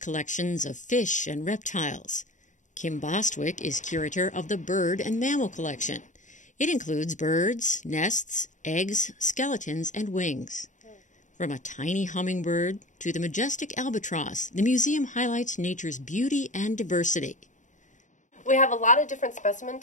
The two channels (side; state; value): right; late; 0.36 ms